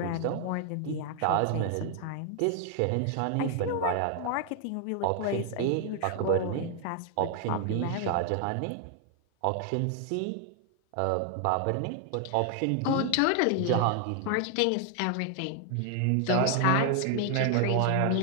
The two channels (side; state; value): both; different; correlation 0.00